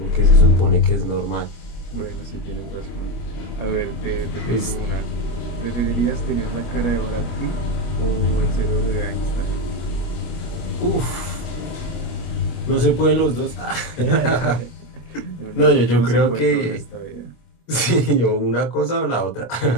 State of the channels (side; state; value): right; late; 25 ms